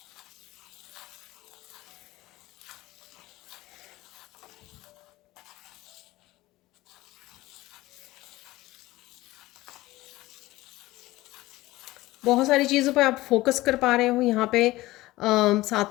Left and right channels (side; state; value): right; quieter; 18.2 dB